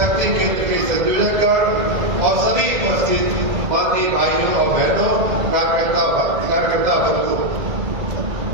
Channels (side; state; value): left; late; 2.0 ms